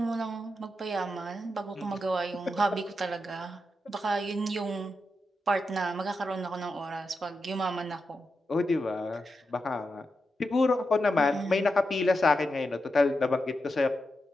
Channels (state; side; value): normal; both; correlation 0.87